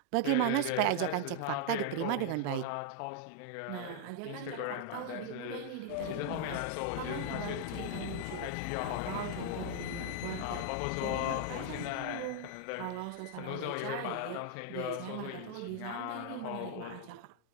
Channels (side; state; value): both; different; correlation 0.00